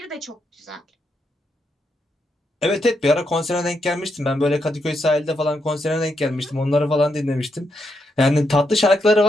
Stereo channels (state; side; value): normal; both; correlation 0.81